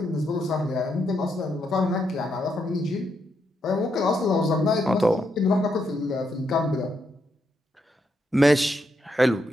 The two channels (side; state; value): both; normal; correlation 0.80